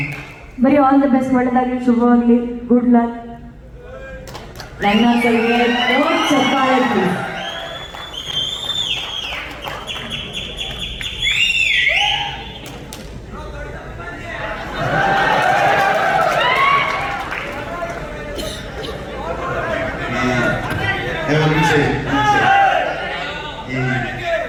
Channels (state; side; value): identical; both; correlation 1.00